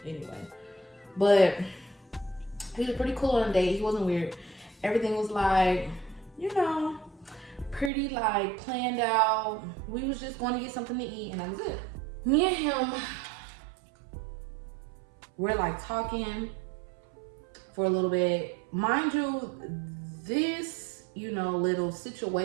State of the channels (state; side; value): drops out; left; at 7.9 s